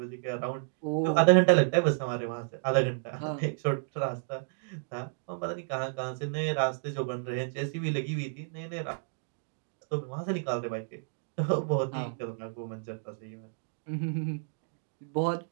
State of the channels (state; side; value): silent; left; digital silence